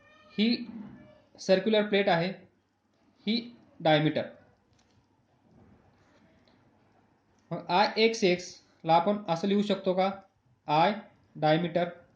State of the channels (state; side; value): identical; both; correlation 1.00